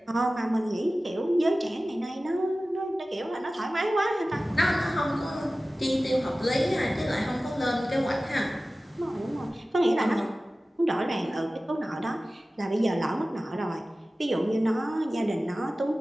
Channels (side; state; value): both; normal; correlation 0.96